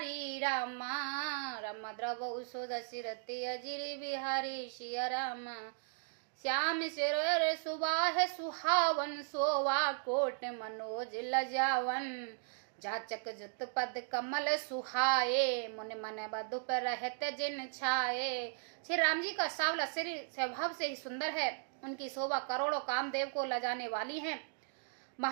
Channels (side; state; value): left; silent; digital silence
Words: रामा, राम द्रव सुदशरथि अजिर बिहारी सिया राम। श्याम सिर सुबाह सुहावन, सोवा कोट मनोज लजावन। जाचक जुत पद कमल सुहाए, मुनि मन बधु पर रहत जिन छाए। श्री राम जी का सावला शरीर स्वभाव से ही सुंदर है। उनकी शोभा करोड़ों कामदेव को लजाने वाली है।